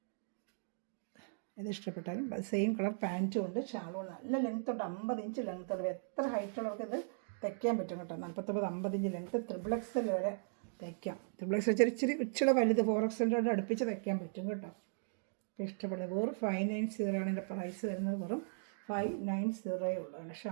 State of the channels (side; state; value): left; silent; digital silence